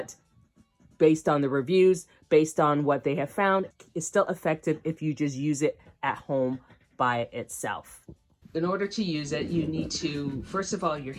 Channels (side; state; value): both; identical; correlation 1.00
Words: based on the reviews, based on what they have found, it's still effective if you just use it at home by itself. In order to use it, you need to, first of all, your